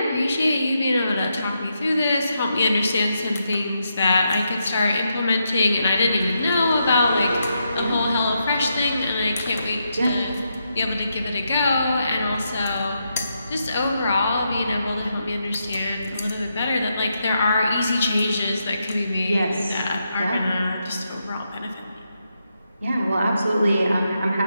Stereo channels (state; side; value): inverted; both; correlation -0.82